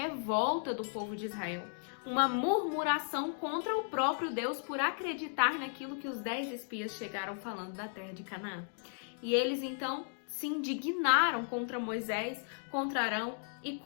do povo de Israel, uma murmuração contra o próprio Deus por acreditar naquilo que os 10 espias chegaram falando da terra de Canaã. E eles então se indignaram contra Moisés, contra Arão e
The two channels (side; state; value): right; silent; digital silence